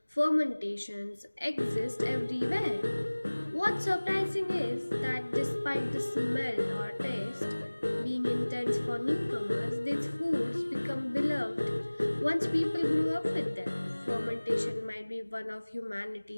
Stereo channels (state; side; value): inverted; both; correlation -1.00